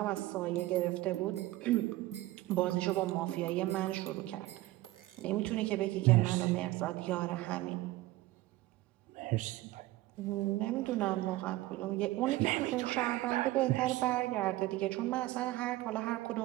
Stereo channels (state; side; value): quieter; left; 17.6 dB